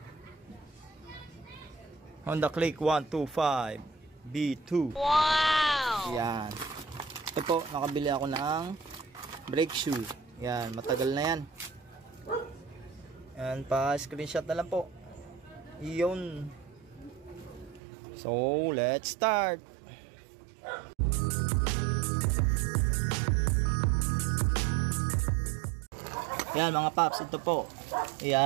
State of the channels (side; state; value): left; drops out; at 17.8 s